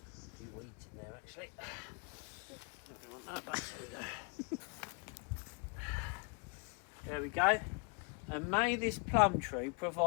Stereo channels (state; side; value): quieter; right; 34.5 dB